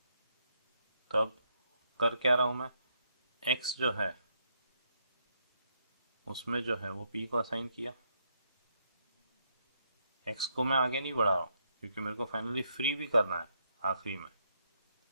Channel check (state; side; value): inverted; both; correlation -0.75